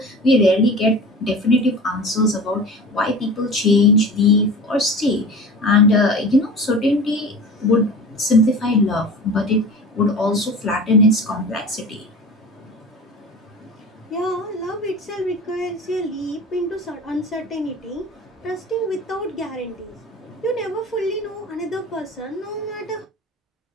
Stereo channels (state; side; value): normal; both; correlation 0.36